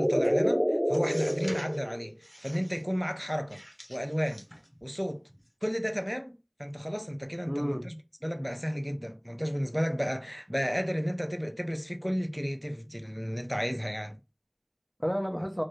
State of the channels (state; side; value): identical; both; correlation 1.00